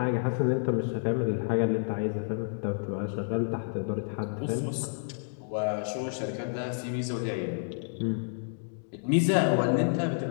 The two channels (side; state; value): right; silent; digital silence